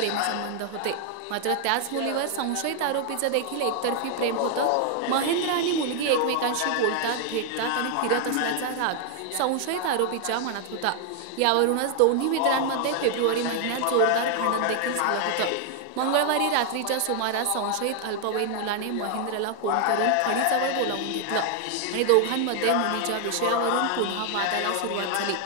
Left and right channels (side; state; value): both; different; correlation 0.00